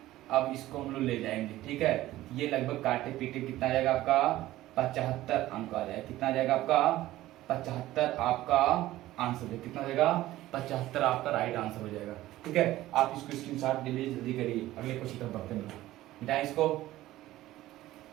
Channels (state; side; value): quieter; left; 15.7 dB